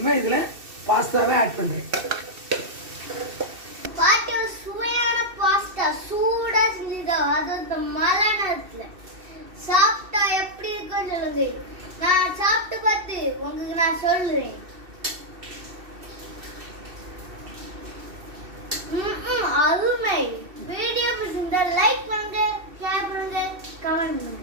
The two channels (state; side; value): late; left; 2.7 ms